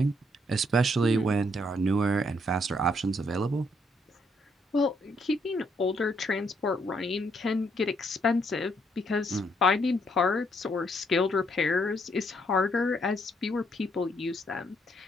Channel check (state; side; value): normal; both; correlation 0.72